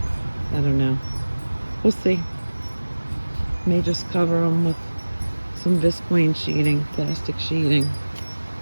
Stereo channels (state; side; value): inverted; both; correlation -1.00